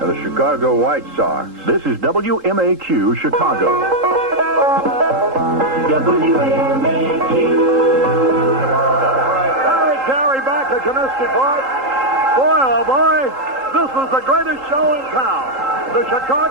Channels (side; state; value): left; late; 3.8 ms